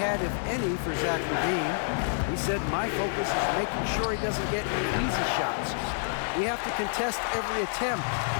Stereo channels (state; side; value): silent; right; 59 dB below the other